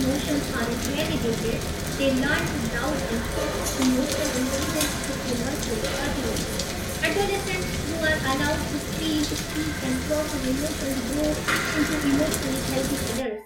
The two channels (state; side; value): identical; both; correlation 1.00